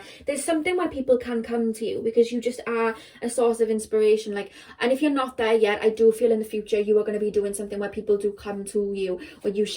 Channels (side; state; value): both; identical; correlation 1.00